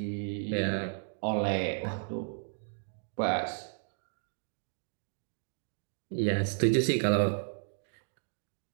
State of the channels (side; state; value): left; silent; digital silence